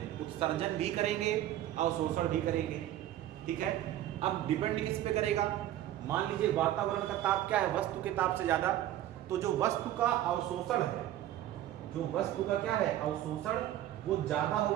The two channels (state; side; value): quieter; left; 13.0 dB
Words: उत्सर्जन भी करेंगे, अवशोषण भी करेंगे। ठीक है, अब डिपेंड किस पे करेगा? मान लीजिए वातावरण का ताप क्या है? वस्तु के ताप से ज्यादा। तो जो वस्तु का अवशोषण है, जो वस्तु का क्या है? अवशोषण, वो ज्यादा